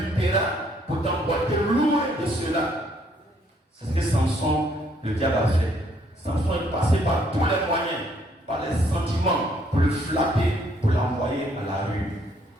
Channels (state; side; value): normal; both; correlation 0.67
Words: pour t'emporter loin de cela. C'est ce que Samson, le diable a fait. Samson est passé par tous les moyens, par les sentiments, pour le flapper, pour l'envoyer à la rue.